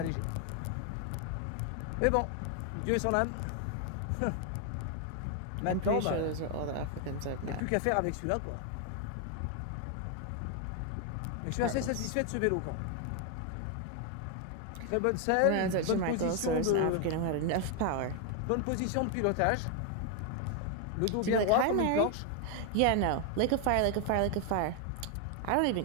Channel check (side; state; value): both; different; correlation 0.01